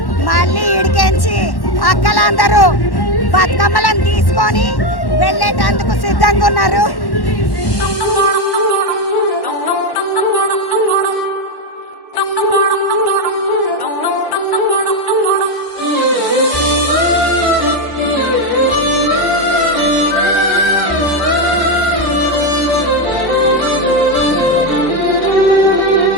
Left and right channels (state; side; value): late; right; 1.1 ms